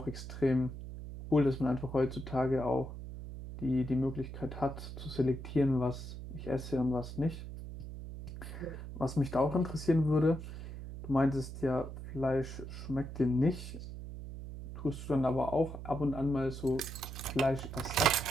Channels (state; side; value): noise; right; hum, 10 dB below the sound